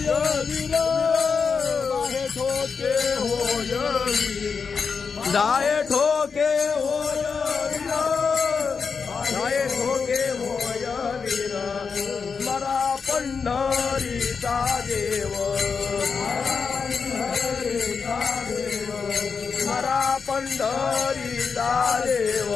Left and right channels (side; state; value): right; quieter; 5.5 dB